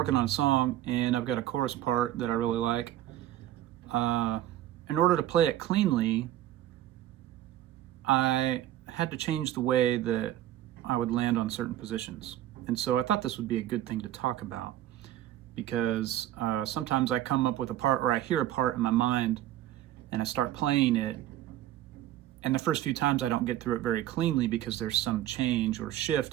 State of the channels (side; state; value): left; quieter; 13.2 dB